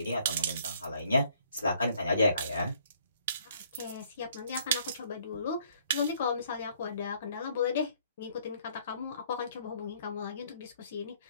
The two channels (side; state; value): both; inverted; correlation -0.62